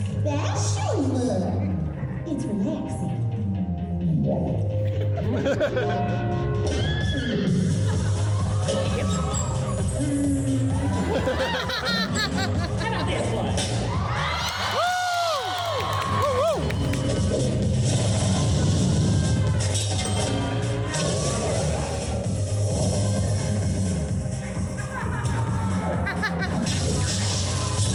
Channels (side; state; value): both; identical; correlation 1.00